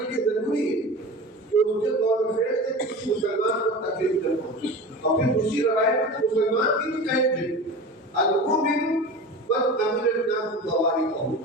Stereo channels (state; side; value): normal; both; correlation 0.32